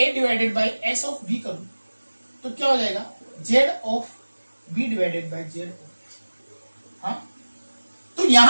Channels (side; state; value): both; inverted; correlation -1.00